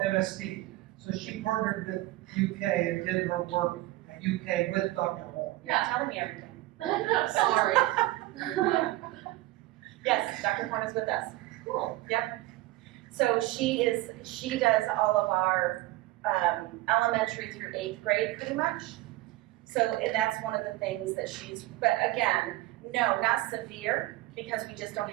So she partnered with UK and did her work at UK with Dr. Horn. You're not telling me everything. Sorry. Yes, Dr. Horn is with us. Cool. So she does all of our elementary through 8th grade pretty much. So and that's one of the things that but again, no, not severe, because we just don't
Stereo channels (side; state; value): left; quieter; 18.1 dB